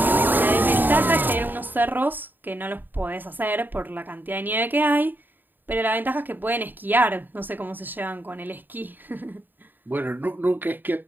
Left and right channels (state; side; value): late; left; 0.091 ms